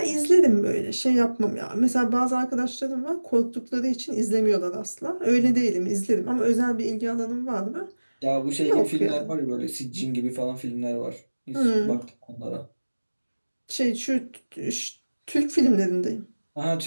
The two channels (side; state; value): both; inverted; correlation -1.00